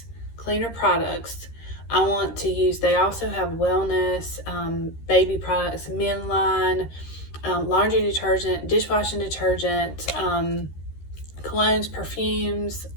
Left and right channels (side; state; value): right; late; 13 ms